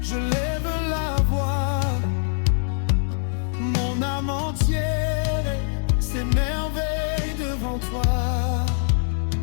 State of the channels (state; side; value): silent; right; 63 dB below the other